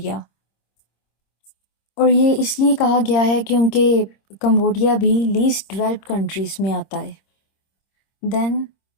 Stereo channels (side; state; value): right; late; 26 ms